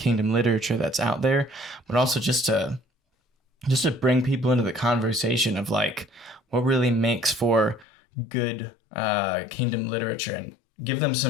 literature that's out there, but also just to bring people into the conversation of like what really makes for good kingdom literature and give them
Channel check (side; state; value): right; drops out; at 7.9 s